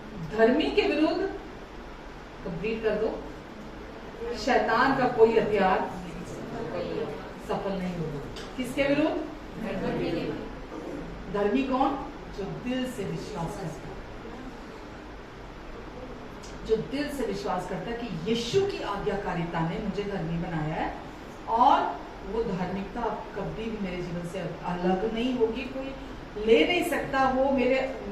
धर्मी के विरुद्ध, कंप्लीट कर दो, शैतान का कोई हथियार सफल नहीं होगा। किसके विरुद्ध? धर्मी कौन? जो दिल से विश्वास करता है, जो दिल से विश्वास करता है कि यीशु की आज्ञाकारिता ने मुझे धर्मी बनाया है और वो धार्मिकता कभी भी मेरे जीवन से अलग नहीं होगी, कोई ले नहीं सकता। वो मेरे,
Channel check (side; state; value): both; identical; correlation 1.00